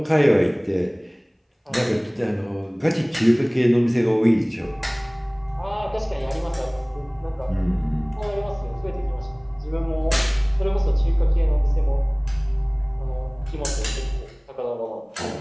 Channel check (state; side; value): identical; both; correlation 1.00